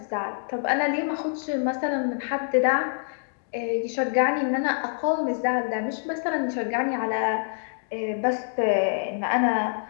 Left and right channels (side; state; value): right; silent; digital silence